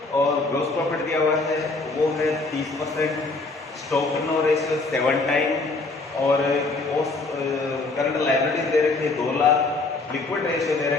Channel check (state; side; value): quieter; right; 3.5 dB